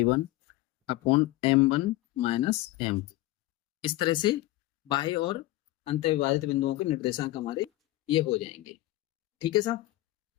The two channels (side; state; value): right; quieter; 17.6 dB